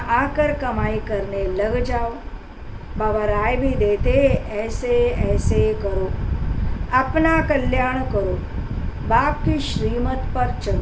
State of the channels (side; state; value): both; identical; correlation 1.00